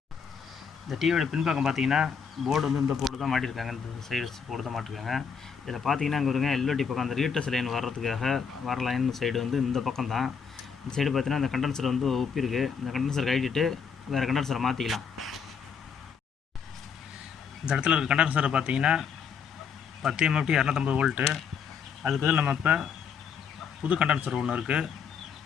இந்த டிவியோட பின்பக்கம் பார்த்தீங்கன்னா போர்டு வந்து இந்த போர்டு தான் மாட்டியிருக்காங்க, இந்த சைடு போர்டு தான் மாட்டிருக்காங்க. இதில் பார்த்தீங்கன்னா இங்கே வருங்க எல்ஓடி பக்கம் அந்த ரீட்டர்ஸ் லைன் வர்றதுக்காக வர லைன் சைடு வந்து இந்த பக்கம் தான். இந்த சைடு பார்த்தீங்கன்னா இந்த கண்டென்சர் வந்து ஒப்பிருக்கு. இந்த கண்டென்சர் கழிச்சிட்டு வேறு கண்டென்சரை மாற்றிக்கலாம். இந்த இடத்துல இருக்க கண்டென்சரை பார்த்தீங்கன்னா 10 MFT 250 வோல்ட்டு. அதுக்கு பதில் நம்ம இப்போ புது கண்டென்சர் ஒன்று இருக்குது.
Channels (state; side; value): quieter; right; 6.5 dB